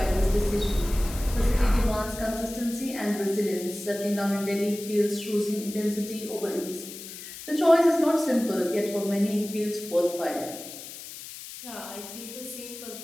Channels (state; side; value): noise; left; hiss, 12 dB below the sound